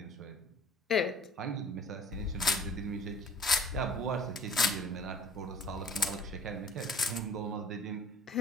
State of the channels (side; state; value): both; normal; correlation 0.49